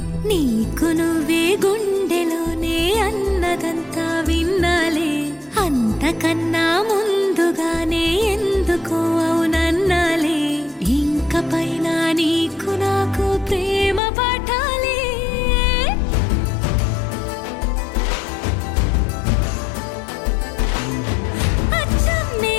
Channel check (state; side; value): drops out; right; at 14.0 s